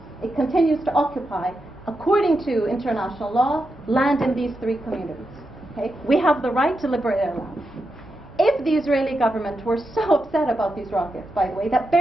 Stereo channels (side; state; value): both; normal; correlation 0.87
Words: It continues to occupy, according to international law, land in these three communities. Okay? We have the right to liberate our land. If the Israeli government were so upset about these rockets, by the way, that